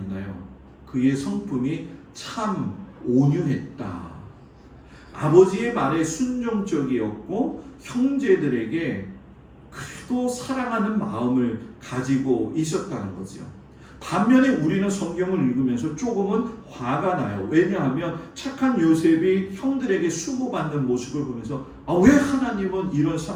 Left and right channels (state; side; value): identical; both; correlation 1.00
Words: 그의 성품이 참 온유했다. 아버지의 말에 순종적이었고 형제들에게 그래도 사랑하는 마음을 가지고 있었다는 거죠. 반면에 우리는 성경을 읽으면서 조금은 화가 나요. 왜냐하면 착한 요셉이 형들에게 수고받는 모습을 보면서 왜 하나님은 이런